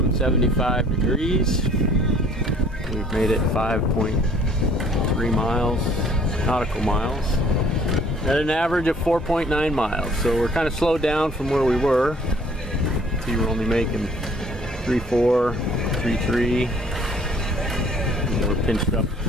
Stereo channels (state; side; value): normal; both; correlation 0.56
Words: 75 degrees. We've made it 5.3 miles, nautical miles, at an average of 4.9 miles. So we're kind of slowed down from where we were. See, we're only making 3.4, 3.3. And we're pinched